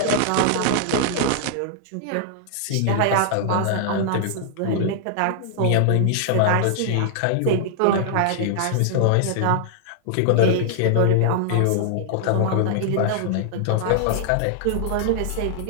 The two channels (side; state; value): both; different; correlation -0.01